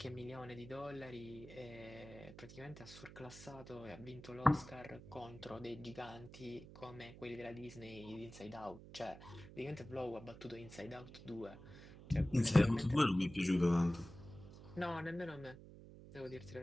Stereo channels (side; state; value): right; noise; hum, 15 dB below the sound